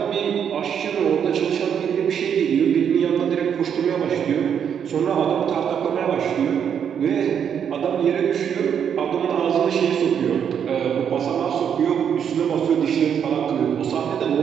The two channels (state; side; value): quieter; left; 8.1 dB